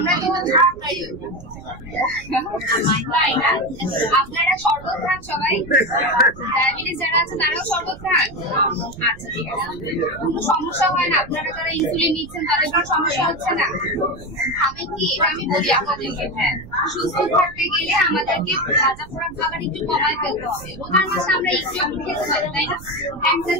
তো তাই না? আপনারা শরবত খান সবাই? ডায়াবেটিস যারা আছে তারাও শরবত খান? আচ্ছা ঠিক আছে, কোনো সমস্যা হয় না? আপনারা যারা ইনসুলিন নিচ্ছেন তাদের কোনো সমস্যা হচ্ছে না? আমি কি এটা আমি বলি আপনাদেরকে, হ্যাঁ সুস্থ থাকতে গেলে আমাদেরকে ভাজা পোড়া খাবার একটু কমায় ফেলতে হবে। রোজার মাসে আমরা একটু খেতে পারি, তাই না? একটা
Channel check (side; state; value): right; noise; rumble, 18 dB below the sound